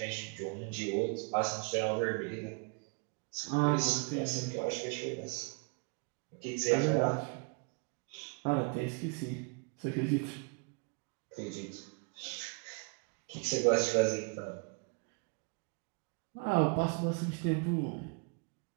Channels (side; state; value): left; quieter; 34.2 dB